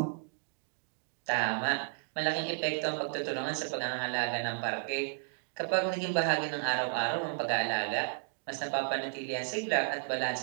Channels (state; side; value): silent; left; digital silence